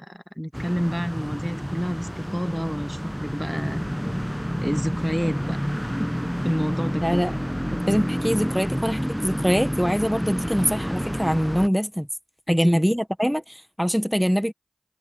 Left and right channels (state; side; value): identical; both; correlation 1.00